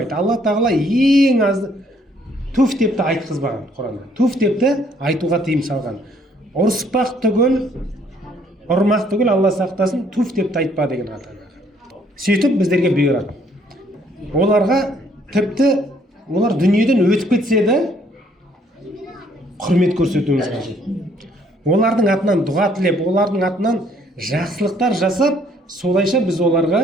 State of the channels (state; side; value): normal; both; correlation 0.64